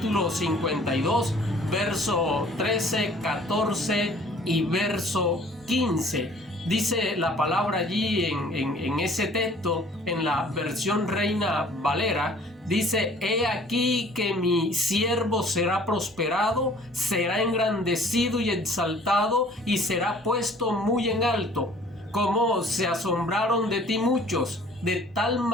52, verso 13, 14 y verso 15. Dice la palabra allí en ese texto, en la versión Reina Valera, dice: he aquí que mi siervo será prosperado, será engrandecido y exaltado, y será puesto muy en alto. Como se asombraron de ti muchos, de tal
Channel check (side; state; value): both; normal; correlation 0.53